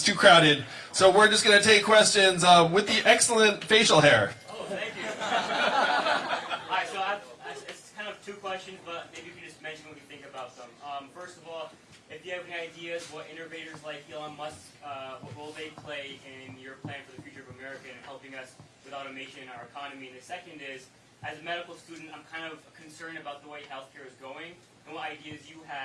too crowded. So we're just going to take questions with the excellent facial hair. Oh, thank you. All right, so it's kind of two questions, but maybe you can just mention what you think about them. First of all, if you have any ideas what innovators like Elon Musk, what role they play in your plan for the future of America and helping us with automation in our economy. And the second is, as a medical student, I'm kind of concerned about the way healthcare is going and what ideas you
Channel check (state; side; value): identical; both; correlation 1.00